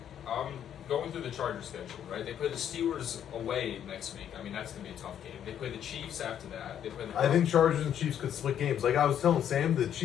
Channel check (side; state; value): right; quieter; 9.7 dB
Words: Going through the Chargers schedule, right? They play the Steelers away next week. I mean, that's going to be a tough game. They play the Chiefs after that. They play the I think Chargers and Chiefs could split games. Like I was telling Sam, the